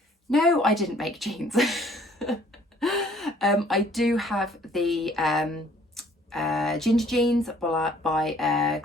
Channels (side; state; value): both; normal; correlation 0.58